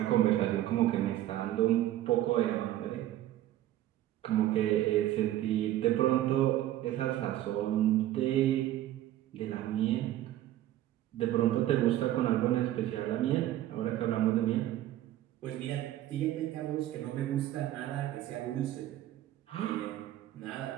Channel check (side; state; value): left; quieter; 13.7 dB